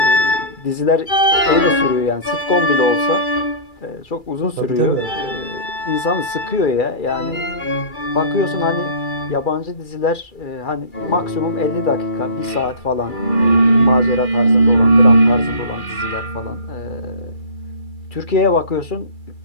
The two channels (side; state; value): right; late; 2.3 ms